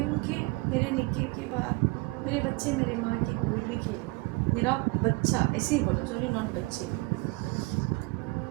ہوں کہ میرے نکاح کے بعد میرے بچے میرے ماں کی گود میں کھیلیں. میرا بچہ، ایسے ہی بولا، سوری ناٹ بچے،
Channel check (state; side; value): quieter; left; 24.5 dB